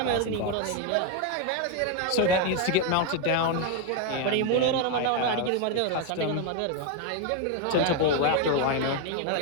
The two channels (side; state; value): both; different; correlation 0.01